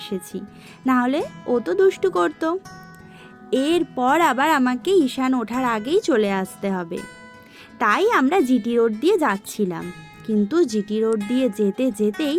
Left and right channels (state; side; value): identical; both; correlation 1.00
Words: এসেছি, নাহলে ও তো দুষ্টু করতো। এরপর আবার আমাকে ঈশান ওঠার আগেই চলে আসতে হবে, তাই আমরা জিটি রোড দিয়ে যাচ্ছিলাম। কিন্তু জিটি রোড দিয়ে যেতে যেতেই